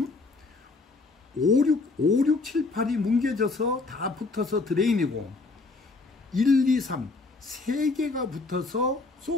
5, 6, 7, 8이 뭉개져서 다 붙어서 드레인이고 1, 2, 3 3개가 붙어서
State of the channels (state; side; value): quieter; right; 3.7 dB